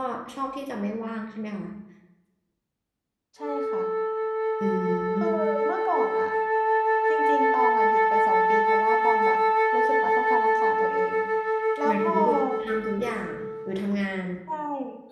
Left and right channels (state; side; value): identical; both; correlation 1.00